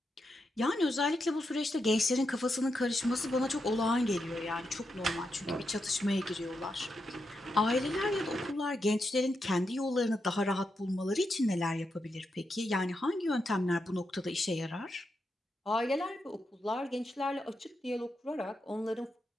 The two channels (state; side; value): normal; both; correlation 0.85